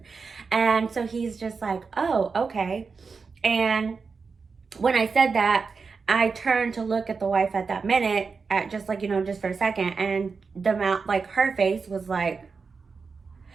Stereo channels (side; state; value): left; quieter; 4.9 dB